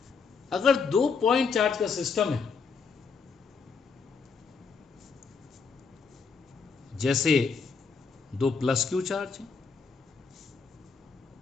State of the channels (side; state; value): right; quieter; 5.3 dB